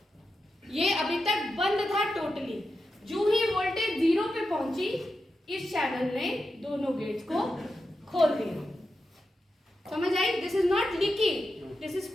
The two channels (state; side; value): normal; both; correlation 0.89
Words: ये अभी तक बंद था टोटली. जो ही वोल्टेज 0 पे पहुंची, इस चैनल ने दोनों गेट्स को खोल दिया. समझ आई? This is not leaky, this is